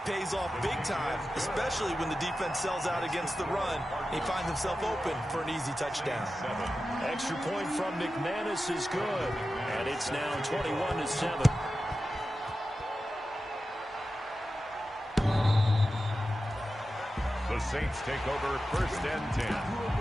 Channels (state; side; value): normal; both; correlation 0.93